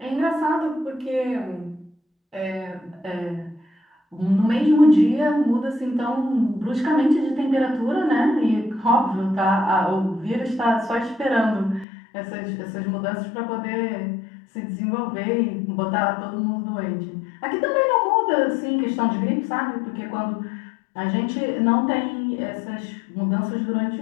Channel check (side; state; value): right; drops out; at 11.9 s